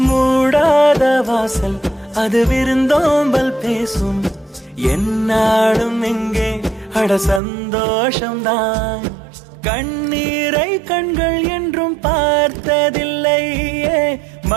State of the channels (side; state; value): left; drops out; at 7.4 s